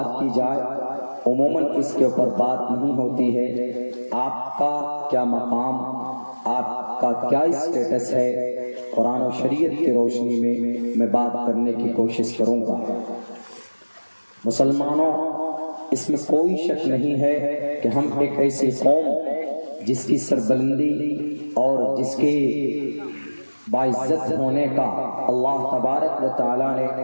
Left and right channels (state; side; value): inverted; both; correlation -1.00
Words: کی جائے، عموماً اس کے اوپر بات نہیں ہوتی ہے۔ آپ کا کیا مقام، آپ کا کیا اسٹیٹس ہے، قرآن و شریعت کی روشنی میں بات کرنے کی کوشش کروں گا۔ مسلمانوں، اس میں کوئی شک نہیں ہے کہ ہم ایک ایسی قوم جس کی سربلندی اور جس کے باعزت ہونے کا اللہ تبارک و تعالیٰ نے